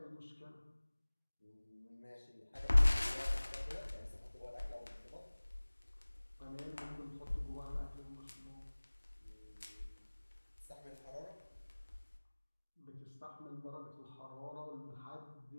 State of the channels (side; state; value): both; inverted; correlation -1.00